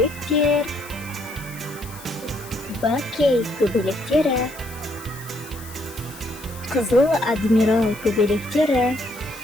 бакей көбелектері, қызыл адмирал көбелектері.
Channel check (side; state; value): left; noise; hiss, 17 dB below the sound